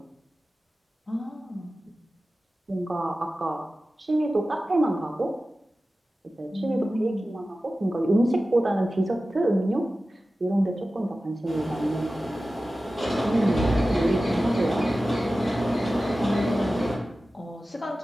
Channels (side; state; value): both; normal; correlation 0.95